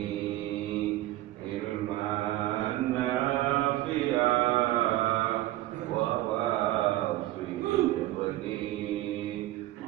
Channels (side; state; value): left; quieter; 16.4 dB